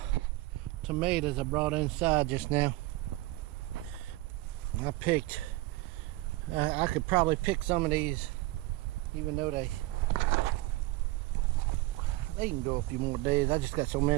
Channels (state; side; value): quieter; left; 19.1 dB